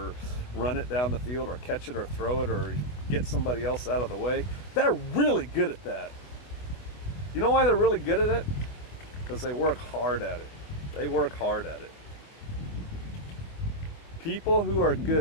run it down the field or catch it or throw it or get somebody else out of the way, they're really good at that. You know why they're really good at it? Because they work hard at it. They work hard at it. People who are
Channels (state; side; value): late; right; 24 ms